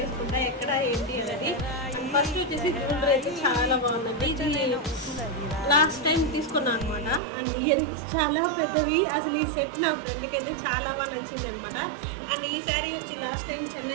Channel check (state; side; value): drops out; left; at 7.2 s